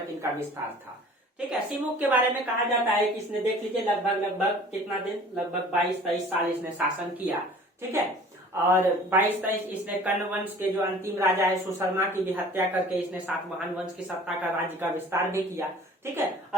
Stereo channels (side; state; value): both; normal; correlation 0.47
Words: इनका विस्तार था। ठीक है, सिमुक के बारे में कहा जाता है कि इसने, देख लीजिए, लगभग कितना दिन, लगभग 22-23 साल इसने शासन किया। ठीक है, और 22-23 इसने कर्ण वंश के जो अंतिम राजा है सुशर्मा की भी हत्या करके इसने सातवाहन वंश की सत्ता का राज्य का विस्तार भी किया। ठीक है,